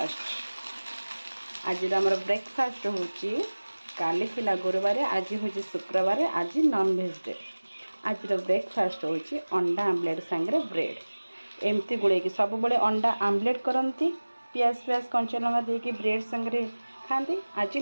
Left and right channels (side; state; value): both; inverted; correlation -1.00